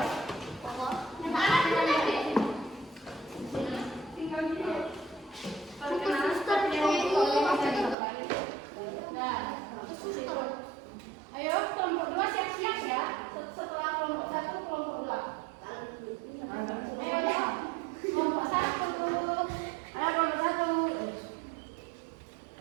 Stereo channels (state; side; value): drops out; left; at 8.0 s